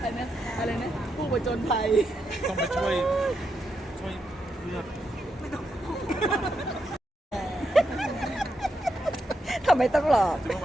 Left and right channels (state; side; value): normal; both; correlation 0.83